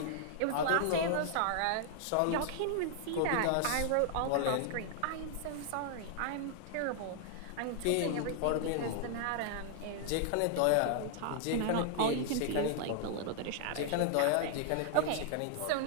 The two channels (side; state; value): both; different; correlation 0.00